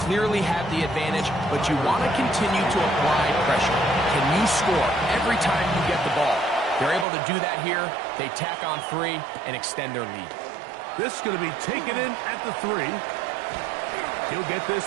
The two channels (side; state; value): left; drops out; at 7.1 s